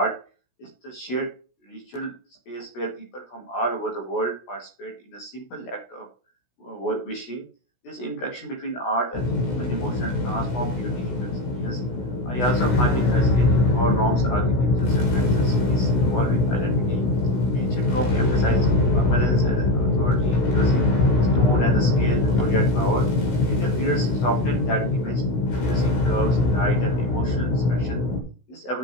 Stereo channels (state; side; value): late; right; 16 ms